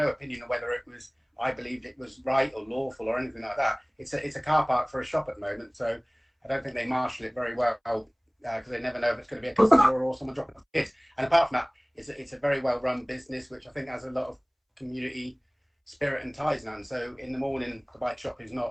opinion on whether it was, I believed it was right or lawful or anything like that. It's a car park for a shop at the moment, so I don't think they marshal it very well because they never know if it's going to be a customer or someone dropping off kids. And apart from that, it's a very well run business, which I think has a lot of community spirit and ties now. And so in the morning, the bike shop is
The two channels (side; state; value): both; identical; correlation 1.00